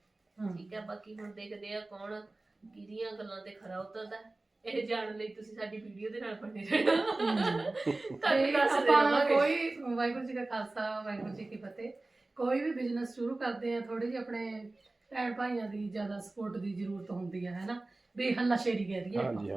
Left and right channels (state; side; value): quieter; left; 3.0 dB